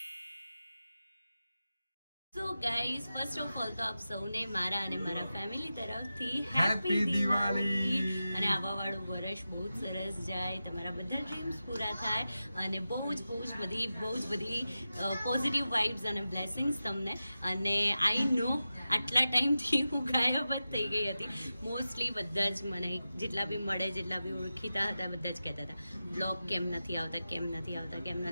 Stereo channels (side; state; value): both; inverted; correlation -0.93